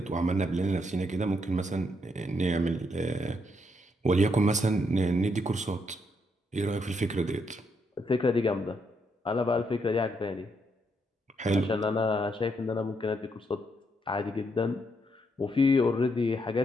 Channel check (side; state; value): both; normal; correlation 0.77